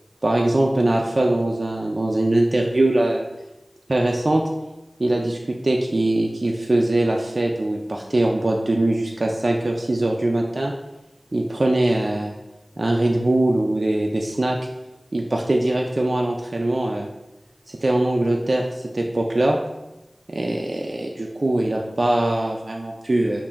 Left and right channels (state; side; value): normal; both; correlation 0.98